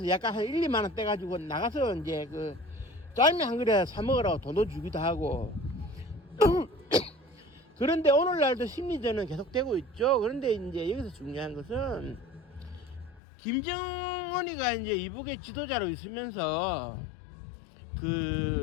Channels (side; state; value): right; drops out; at 13.2 s